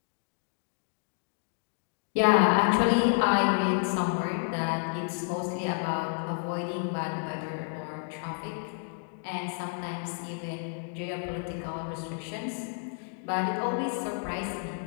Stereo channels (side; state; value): right; silent; 58 dB below the other